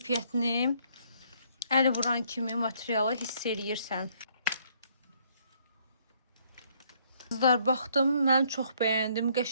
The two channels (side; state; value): both; inverted; correlation -0.67